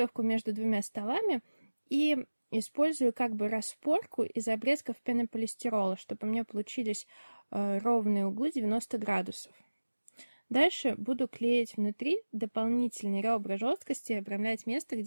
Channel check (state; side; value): inverted; both; correlation -1.00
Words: между двумя столами и использую как бы распорку из обрезков пенополистирола, чтобы у меня получились ровные углы 90 градусов. Дальше буду клеить внутри дополнительные ребра жесткости и обрамлять место,